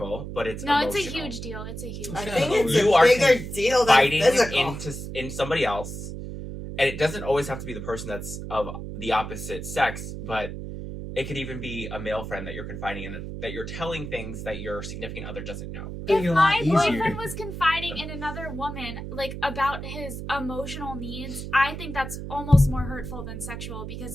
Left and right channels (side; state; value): right; noise; hum, 8 dB below the sound